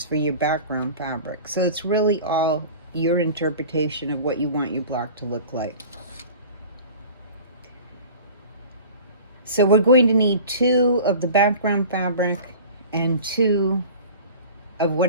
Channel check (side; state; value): both; inverted; correlation -0.40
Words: for your background fabric. So it's really all your interpretation of what you want your block to look like. So we're going to need 2 of the background fabric and 2 of